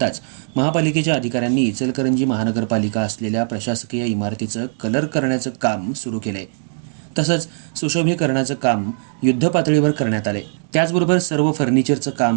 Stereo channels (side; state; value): left; silent; digital silence